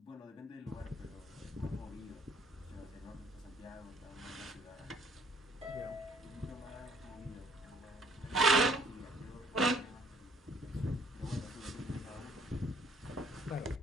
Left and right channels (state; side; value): normal; both; correlation 0.61